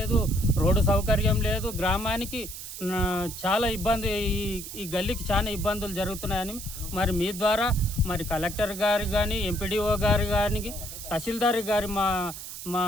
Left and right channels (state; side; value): noise; right; hiss, 10 dB below the sound